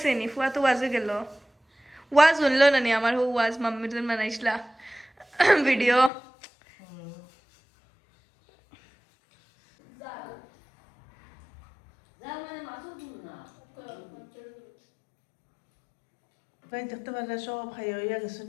নি ফুয়া তো ওয়াজে গেল ওয়াজ শুনলো না নি আমার হো ওয়াজ মাম্মির জন্য বানাইছিলা ভিডিও প্রায় দেখতে পারলে সব খাই হইয়া গেছেন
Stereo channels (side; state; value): right; drops out; at 6.1 s